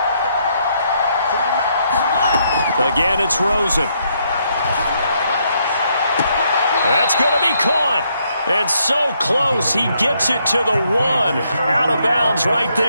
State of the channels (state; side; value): inverted; both; correlation -0.74